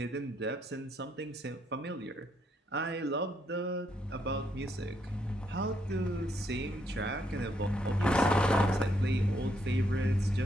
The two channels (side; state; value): both; normal; correlation 0.75